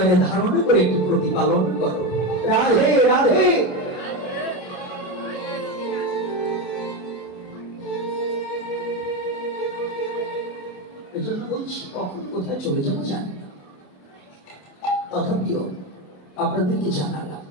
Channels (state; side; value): late; right; 27 ms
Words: ধারণ করে একটু প্রতিপালন করো। রাধে রাধে। এজন্য বলছি কখন কোথায় চলে যাবো জানি না, তথাপিও আপনাদেরকে জানালাম